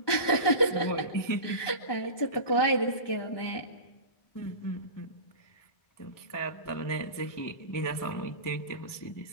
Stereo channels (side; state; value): right; late; 1.2 ms